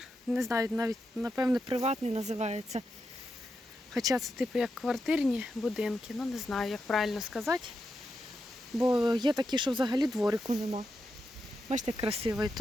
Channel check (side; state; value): both; normal; correlation 0.86